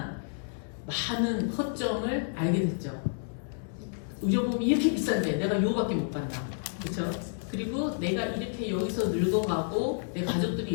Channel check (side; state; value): right; silent; digital silence